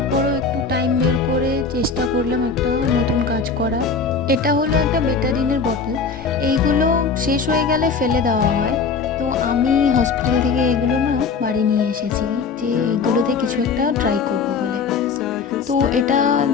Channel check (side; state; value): right; quieter; 5.1 dB